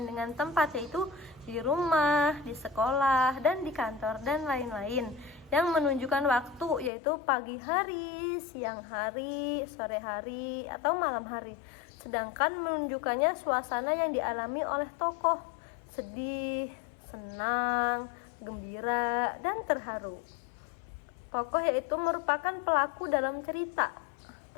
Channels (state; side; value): drops out; right; at 6.9 s